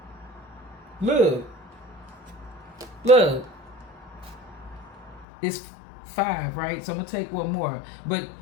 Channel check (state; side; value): drops out; right; at 5.2 s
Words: Look. It's 5, right? So I'm going to take one more. But